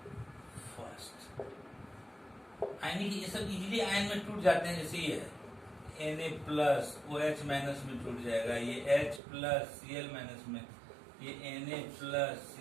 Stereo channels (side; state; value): left; drops out; at 9.2 s